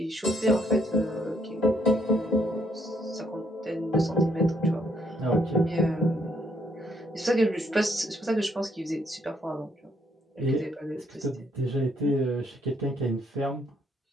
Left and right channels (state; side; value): normal; both; correlation 0.71